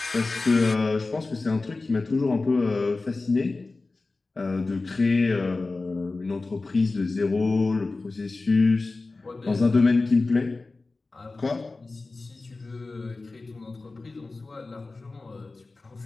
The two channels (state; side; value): quieter; right; 3.5 dB